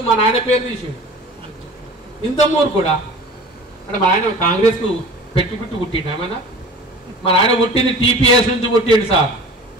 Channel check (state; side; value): normal; both; correlation 0.41